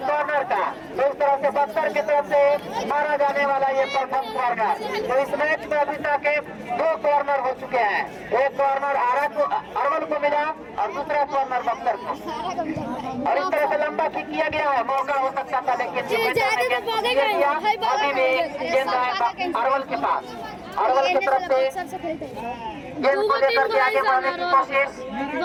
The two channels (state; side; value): identical; both; correlation 1.00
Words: कॉर्नर का। तो इस तरह से बक्सर की तरफ से मारा जाने वाला ये प्रथम कॉर्नर। तो इस मैच में अभी तक 2 कॉर्नर हो चुके हैं। एक कॉर्नर अरवल को मिला और दूसरा कॉर्नर बक्सर को। और इस तरह से लंबा किक किया गया है, मौका हो सकता था लेकिन अभी भी गेंद अरवल के पास। अरवल की तरफ से गेंद को लेकर के आगे बढ़ने की कोशिश,